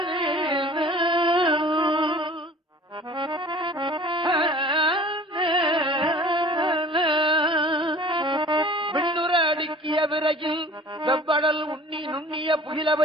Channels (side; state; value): both; normal; correlation 0.45